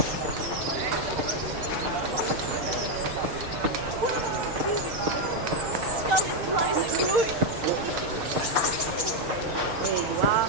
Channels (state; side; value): late; left; 6.6 ms